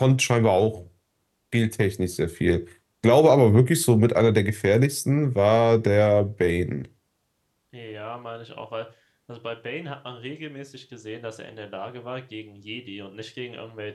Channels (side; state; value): both; identical; correlation 1.00